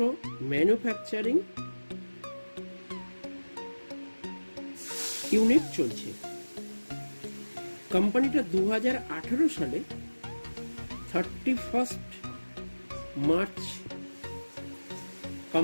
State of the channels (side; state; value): both; inverted; correlation -1.00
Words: ম্যানুফ্যাকচারিং ইউনিট চলছে। কোম্পানিটা 2018 সালে 31 মার্চ